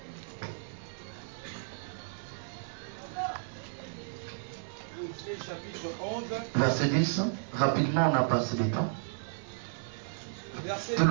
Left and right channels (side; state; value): left; silent; digital silence